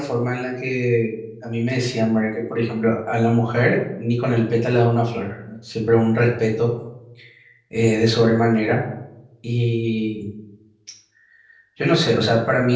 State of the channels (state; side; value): identical; both; correlation 1.00